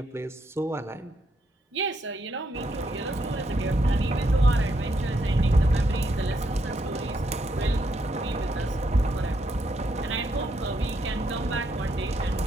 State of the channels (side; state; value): both; normal; correlation 0.77